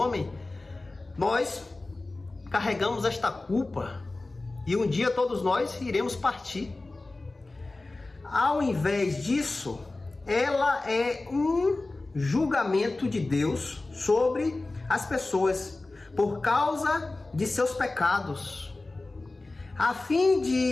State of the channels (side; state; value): right; quieter; 3.1 dB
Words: nós carregamos esta culpa e um dia todos nós iremos partir. Ao invés disso, ela é um julgamento de Deus sobre as pessoas por causa de seus pecados. A fim